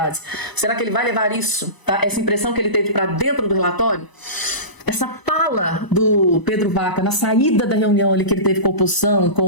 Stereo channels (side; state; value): right; late; 1.0 ms